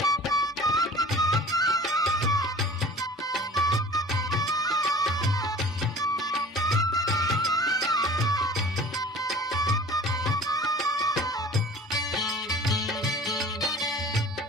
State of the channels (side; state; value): both; normal; correlation 0.44